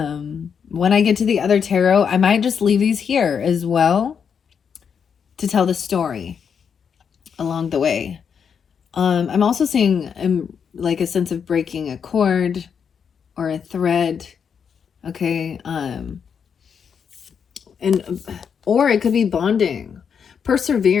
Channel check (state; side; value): quieter; right; 6.9 dB